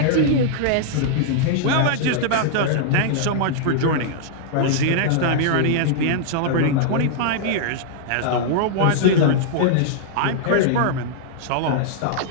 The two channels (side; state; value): both; different; correlation -0.01